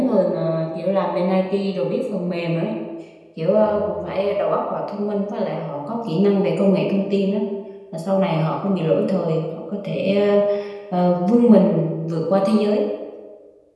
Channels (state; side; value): identical; both; correlation 1.00